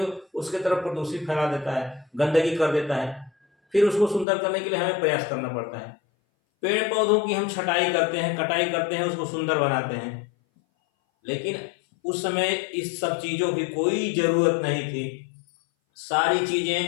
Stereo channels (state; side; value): drops out; right; at 4.2 s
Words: उसके तरफ प्रदूषित फैला देता है, गंदगी कर देता है, फिर उसको सुंदर करने के लिए हमें प्रयास करना पड़ता है। पेड़ पौधों की हम छटाई करते हैं, कटाई करते हैं, उसको सुंदर बनाते हैं, लेकिन उस समय इस सब चीजों की कोई जरूरत नहीं थी। सारी